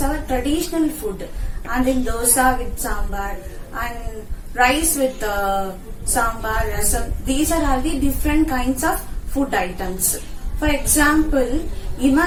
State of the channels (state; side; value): identical; both; correlation 1.00